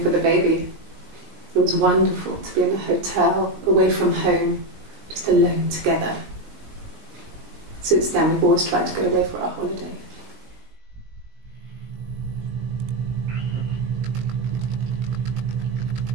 for the baby. It was wonderful to be in a hotel, away from home, just alone together. Since then, we've always tried to get away for our holiday.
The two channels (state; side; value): late; left; 19 ms